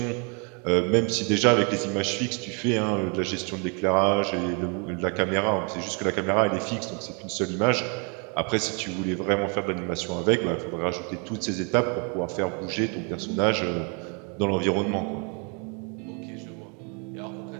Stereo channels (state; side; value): quieter; left; 36.0 dB